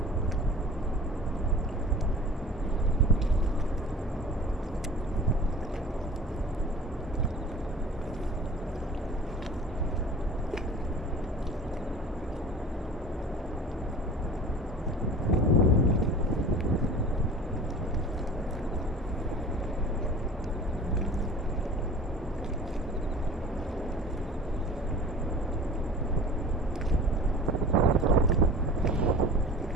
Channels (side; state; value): both; normal; correlation 0.41